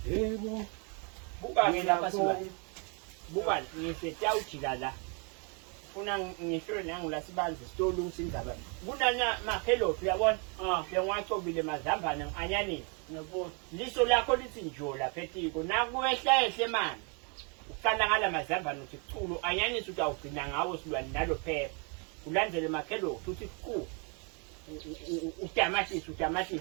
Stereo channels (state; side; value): quieter; left; 35.4 dB